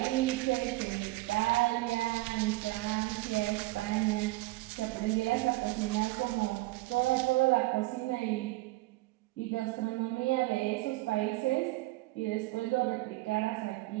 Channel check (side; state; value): left; quieter; 20.0 dB